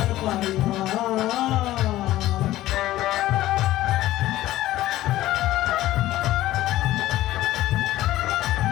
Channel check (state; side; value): quieter; right; 15.3 dB